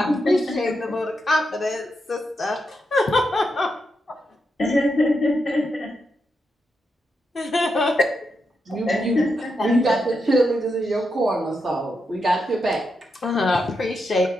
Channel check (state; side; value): normal; both; correlation 0.84